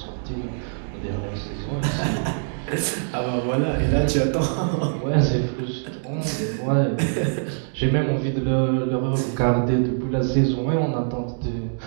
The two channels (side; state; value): left; silent; digital silence